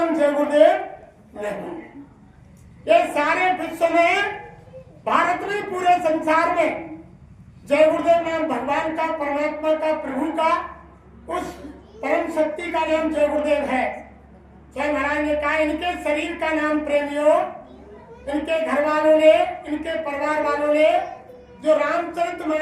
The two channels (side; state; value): both; identical; correlation 1.00